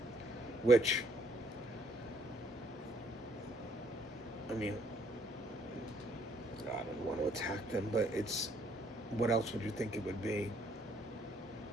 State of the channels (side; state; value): both; normal; correlation 0.65